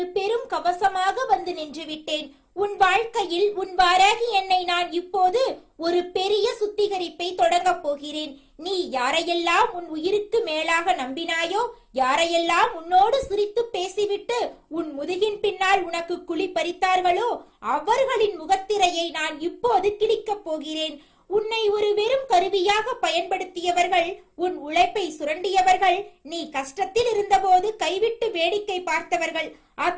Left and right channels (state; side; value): identical; both; correlation 1.00